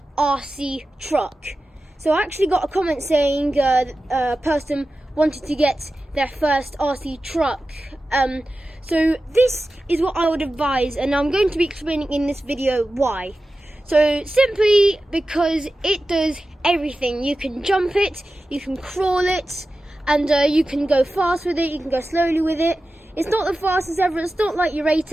RC truck. So I actually got a comment saying a person wanted to get their first RC truck. So this is what I would advise, and I'm going to be explaining in this video why. So simply because it does everything. You can jump it, you can crawl it, and you can go fast with it, you can go slowly with it. It's not the fastest ever, it's not like your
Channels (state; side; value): normal; both; correlation 0.94